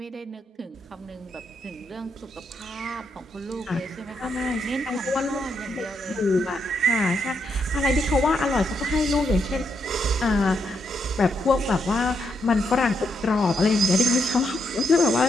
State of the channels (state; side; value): normal; both; correlation 0.79